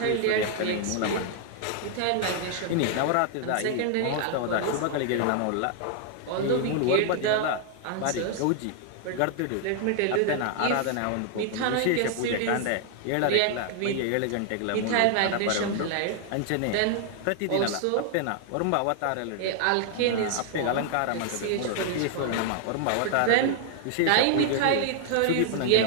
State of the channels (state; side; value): different; both; correlation 0.00